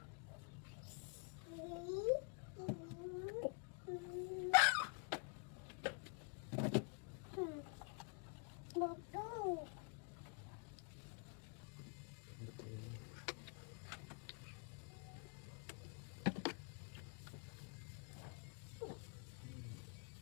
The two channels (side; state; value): right; quieter; 39.3 dB